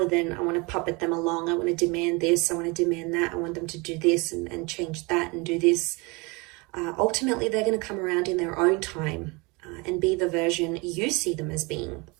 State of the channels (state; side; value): quieter; left; 27.1 dB